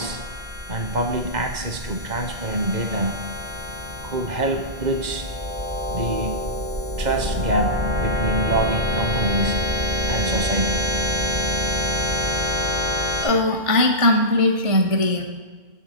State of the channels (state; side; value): late; left; 2.0 ms